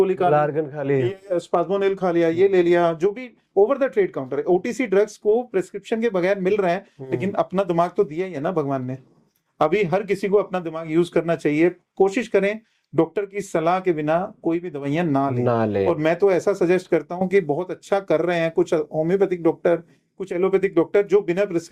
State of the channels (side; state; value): both; identical; correlation 1.00